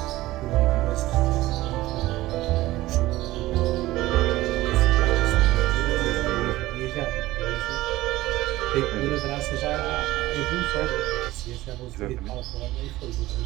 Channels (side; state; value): left; quieter; 17.2 dB